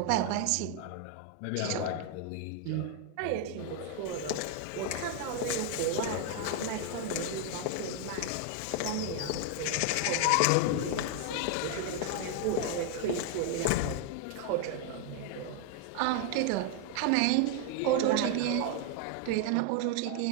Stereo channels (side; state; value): both; different; correlation 0.00